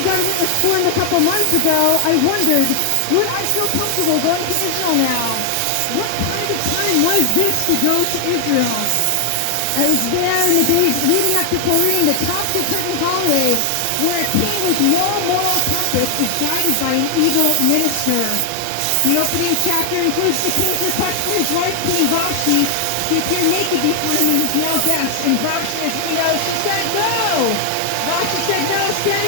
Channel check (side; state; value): both; different; correlation 0.00